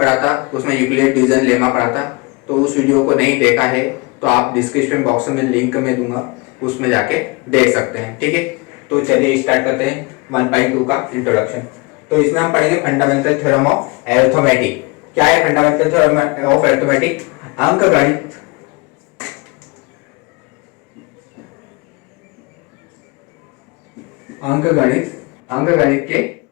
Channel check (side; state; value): right; quieter; 27.6 dB